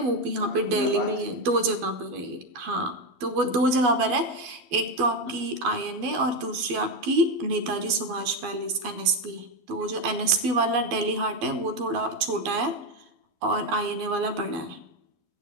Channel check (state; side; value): late; left; 11 ms